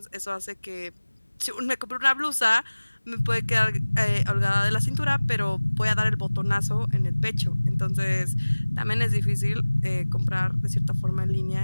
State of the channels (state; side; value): inverted; both; correlation -1.00